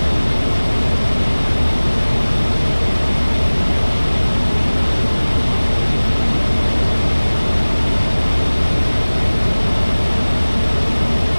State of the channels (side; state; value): both; inverted; correlation -1.00